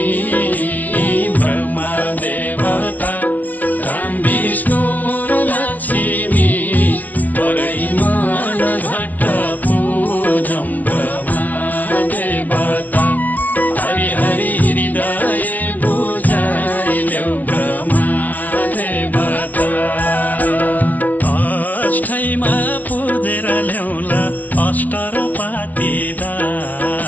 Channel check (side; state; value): right; late; 0.075 ms